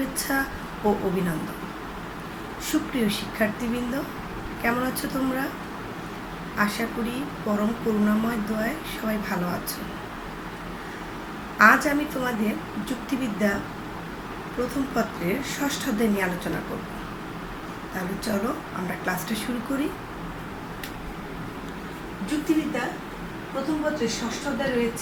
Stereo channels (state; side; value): identical; both; correlation 1.00